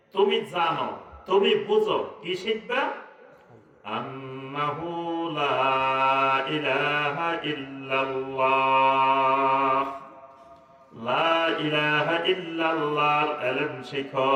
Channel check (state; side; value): identical; both; correlation 1.00